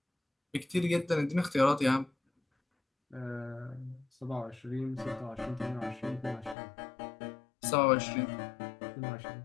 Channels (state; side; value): drops out; right; at 6.6 s